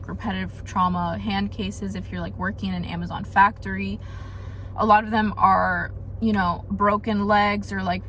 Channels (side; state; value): both; identical; correlation 1.00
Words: repetitive trauma hand cases if you're like working in an Amazon factory. A lot of them are, you know, broken legs or like